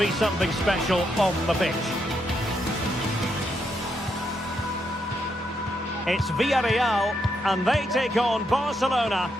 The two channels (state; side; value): normal; both; correlation 0.79